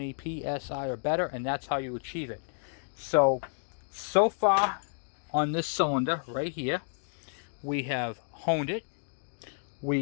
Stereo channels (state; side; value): silent; right; digital silence